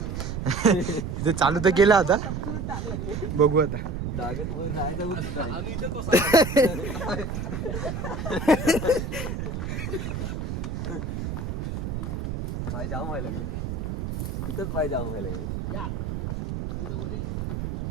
इथे चालू तर केलं आता बघू आता. डागत वर जायचं आम्ही इथेच बसलो. पाय जाम व्हायला लागले इथंच पाय जाम व्हायला लागले. या मी तर बोलीन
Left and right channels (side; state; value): right; noise; rumble, 4 dB below the sound